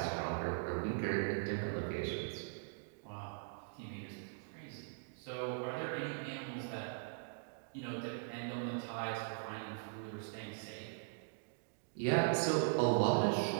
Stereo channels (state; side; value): silent; left; digital silence